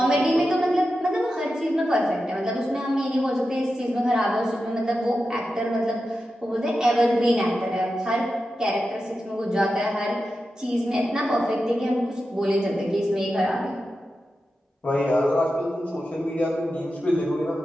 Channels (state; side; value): normal; both; correlation 0.91